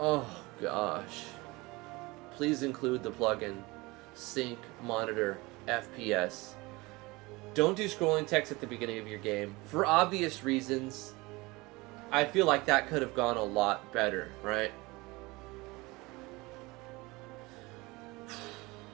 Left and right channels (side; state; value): left; quieter; 23.1 dB